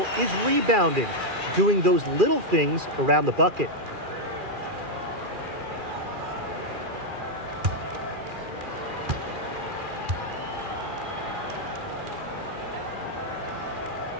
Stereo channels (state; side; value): late; left; 2.4 ms